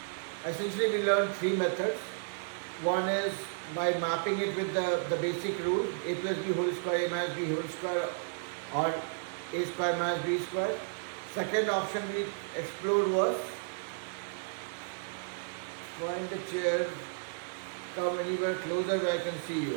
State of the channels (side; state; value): left; silent; digital silence